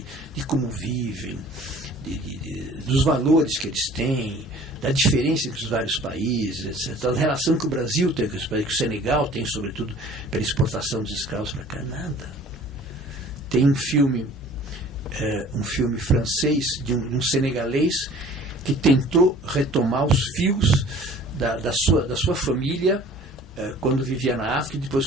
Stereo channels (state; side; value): normal; both; correlation 0.49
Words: de como vivem, dos valores que eles têm, da diferença entre os vários países, etc. Da relação que o Brasil tem com os países, que o Senegal tem, sobretudo, pela exportação dos escravos para cá, nada. Tem um filme francês de um senegalês que tentou retomar os fios da sua família quando vivia na África e depois